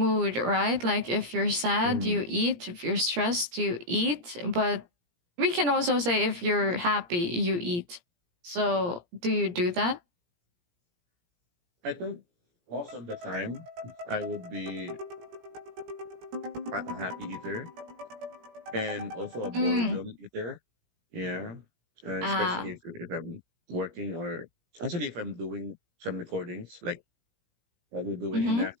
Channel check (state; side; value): late; left; 17 ms